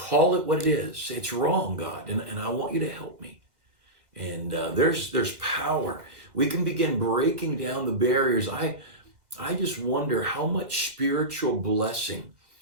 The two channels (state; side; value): late; left; 2.1 ms